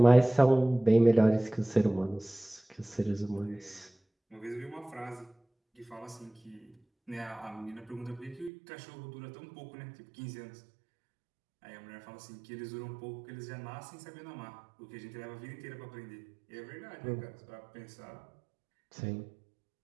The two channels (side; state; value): left; drops out; at 8.5 s